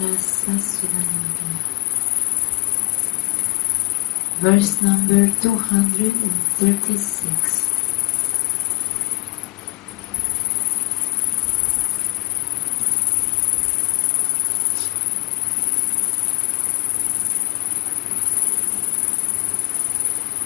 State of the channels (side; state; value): right; quieter; 18.4 dB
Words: Rasa Sudhanidhi, verse number 236.